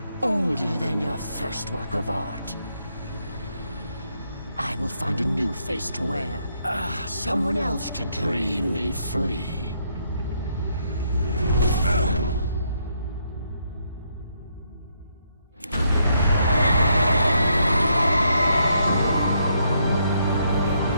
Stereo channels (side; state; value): both; inverted; correlation -0.75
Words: Older than your first work of art. I will find a new face to wear. Someone else to dream me free.